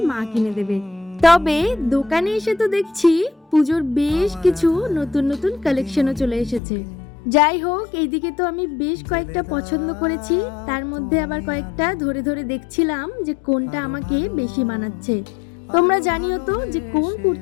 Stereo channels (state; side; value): drops out; right; at 6.6 s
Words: মা কিনে দেবে। তবে দোকানে এসে তো দেখছি পুজোর বেশ কিছু নতুন নতুন কালেকশনও চলে এসেছে। যাই হোক, এইদিকে তো আমি বেশ কয়েকটা পছন্দ করেছি, তার মধ্যে আবার কয়েকটা ধরে ধরে দেখছিলাম যে কোনটা আমাকে বেশি মানাচ্ছে। তোমরা জানিও তো যে কোন